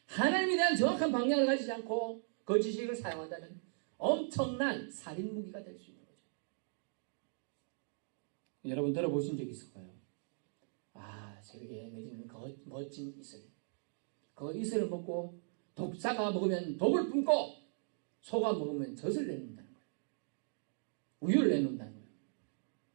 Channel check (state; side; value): silent; left; digital silence